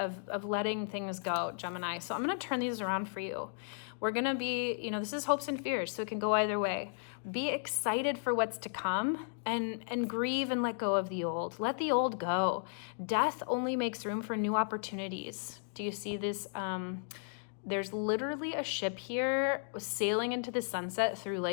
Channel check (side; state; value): right; silent; digital silence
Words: letting things go, Gemini. So I'm going to turn these around for you. We're going to be, you know, this is hopes and fears, so it can go either way. Be excited for what's to come and grieve and let go of the old. Let the old go. Death only makes room for new opportunities. Do you see this? There's literally a ship here sailing into the sunset through